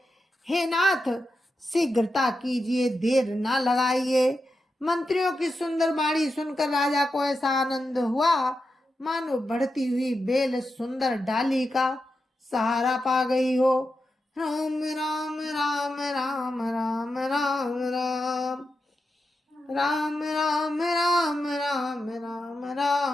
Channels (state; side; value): normal; both; correlation 0.88